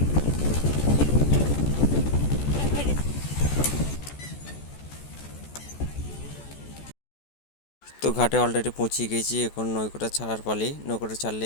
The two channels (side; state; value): right; late; 14 ms